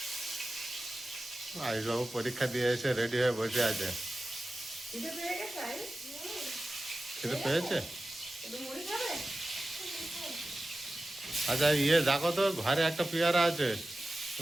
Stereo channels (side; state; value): both; normal; correlation 0.95